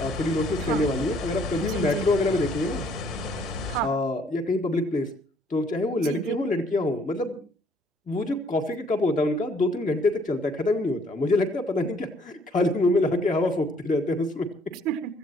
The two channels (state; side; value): normal; both; correlation 0.63